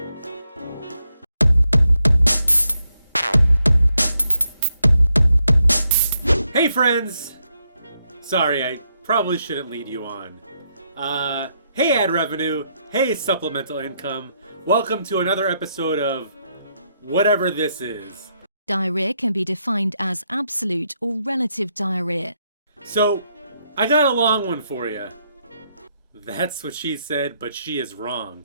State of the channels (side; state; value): both; inverted; correlation -0.79